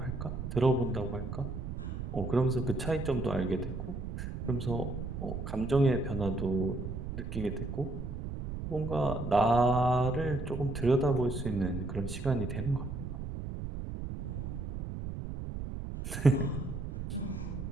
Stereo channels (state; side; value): noise; right; rumble, 6 dB below the sound